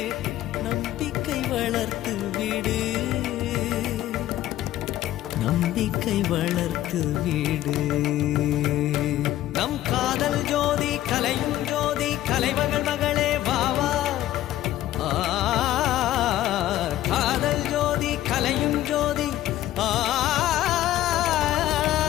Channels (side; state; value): right; quieter; 13.9 dB